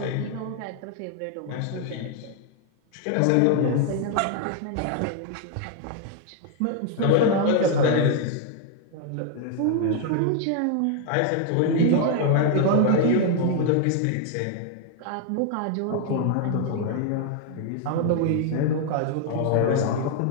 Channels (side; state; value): both; different; correlation 0.00